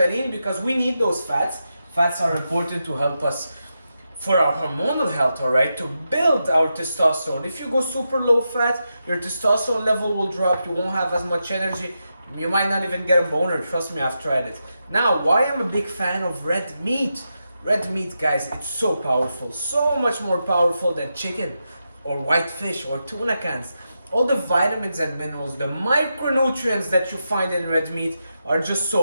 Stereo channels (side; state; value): both; inverted; correlation -0.87